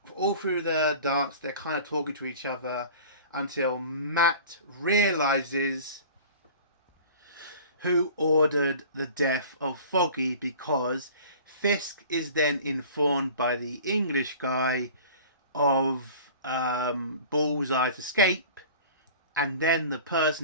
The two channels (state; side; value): inverted; both; correlation -0.43